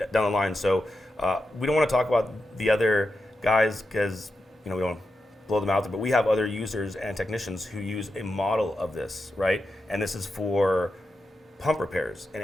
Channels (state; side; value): normal; both; correlation 0.88